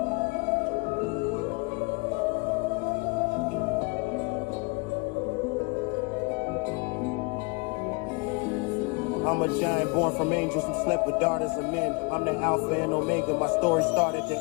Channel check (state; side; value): quieter; right; 30.1 dB